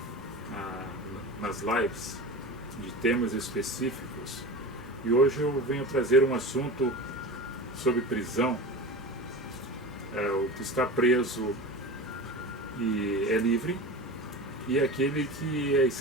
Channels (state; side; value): normal; both; correlation 0.30